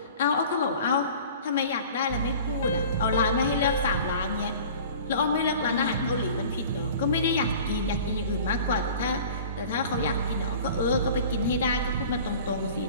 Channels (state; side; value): inverted; both; correlation -0.43